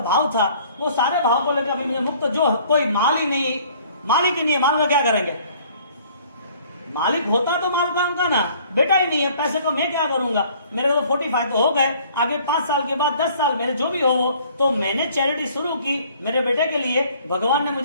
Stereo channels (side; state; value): both; inverted; correlation -0.56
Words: भाव था, वो सारे भाव को लेकर अभी मुझे मुक्त, जो कोई माल ही नहीं, मालिक ही नहीं है, माल में क्या करेंगे? मालिक होता तो माल का उनका ना, बेटा ही नहीं है, पैसे को मैं क्या करूंगा? मेरे को तो 45 तो हो गए, आगे 5 साल के बाद 10 साल मेरे जो भी हो, तो मैंने चैरिटी शुरू की मेरे बेटे के लिए। भगवान ने